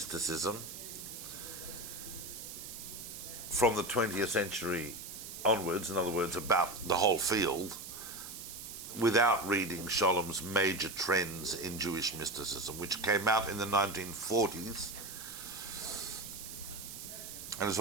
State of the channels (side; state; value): right; noise; hiss, 10 dB below the sound